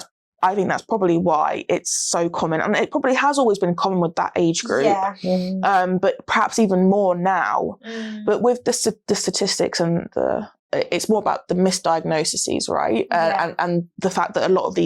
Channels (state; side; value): identical; both; correlation 1.00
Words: probably why it's so common, and it probably has always been common with that age group, but perhaps even more now. But with the statistics and it's more about the misdiagnoses, right? And the fact that a lot of